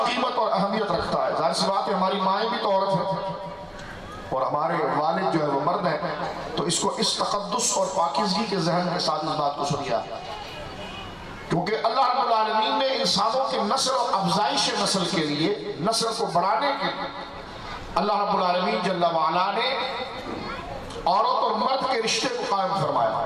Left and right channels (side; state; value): both; identical; correlation 1.00